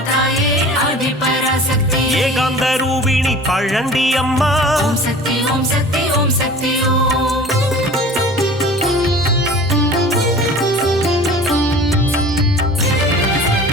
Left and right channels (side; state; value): both; normal; correlation 0.42